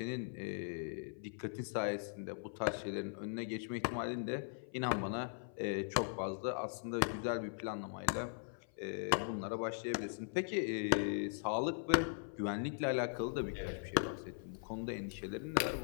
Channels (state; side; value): silent; right; 51 dB below the other